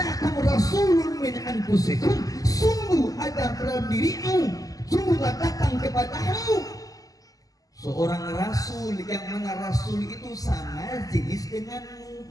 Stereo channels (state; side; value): late; right; 0.17 ms